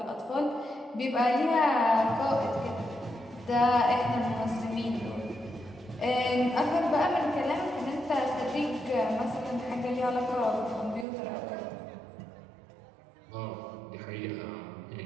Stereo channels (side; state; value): left; drops out; at 11.1 s